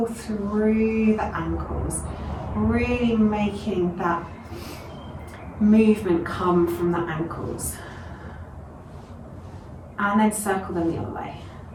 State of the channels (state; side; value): identical; both; correlation 1.00